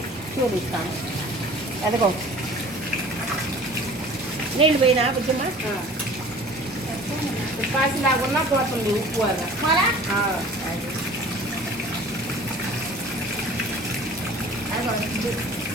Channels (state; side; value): normal; both; correlation 0.46